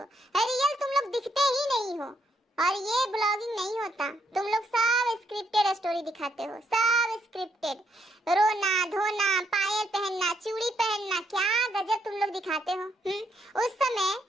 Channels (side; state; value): both; normal; correlation 0.74